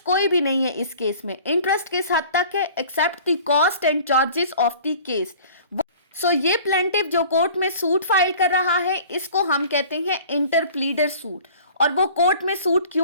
कोई भी नहीं है इस केस में, इंटरेस्ट किस हद तक है, except the cost and charges of the case. So ये प्लेंटिफ जो कोर्ट में सूट फाइल कर रहा है, इसको हम कहते हैं इंटरप्लीडर सूट। और वो कोर्ट में सूट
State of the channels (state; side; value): inverted; both; correlation -0.47